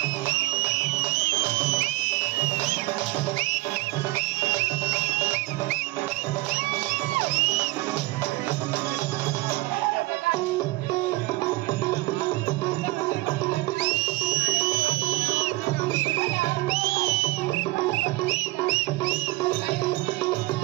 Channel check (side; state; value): left; quieter; 20.3 dB